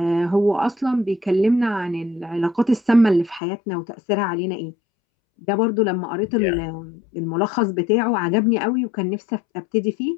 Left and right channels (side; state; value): right; drops out; at 3.4 s